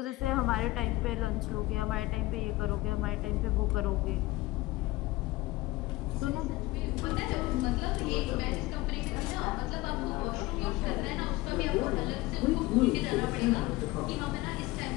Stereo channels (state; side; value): quieter; right; 19.5 dB